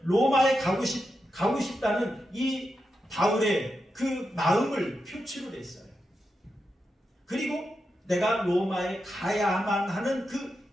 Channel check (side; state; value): both; normal; correlation 0.87